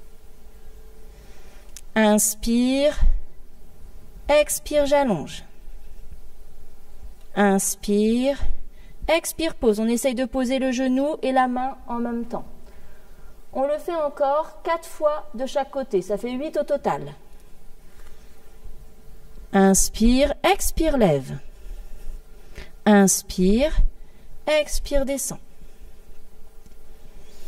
Inspire, expire, j'allonge. Inspire, expire, pose. On essaye de poser le genou et la main en même temps. On le fait encore 4 fois de chaque côté. Ça fait 8 au total. Inspire, expire, lève. Inspire, expire, descend.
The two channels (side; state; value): both; identical; correlation 1.00